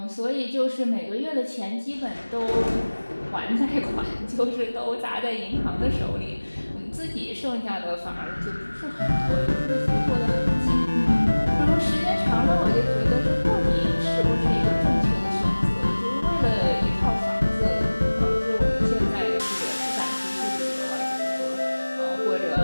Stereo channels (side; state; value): both; inverted; correlation -1.00